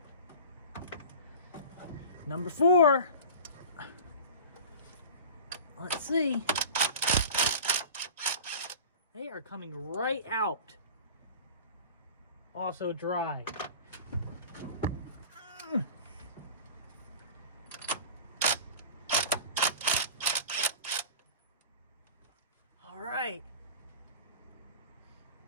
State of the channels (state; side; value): inverted; both; correlation -0.37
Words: Number four. Let's see. They are coming right out. Also dry. All right.